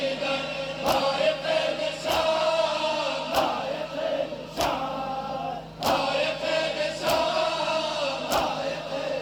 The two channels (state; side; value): identical; both; correlation 1.00